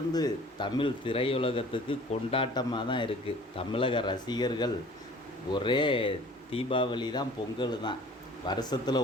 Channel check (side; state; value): both; normal; correlation 0.48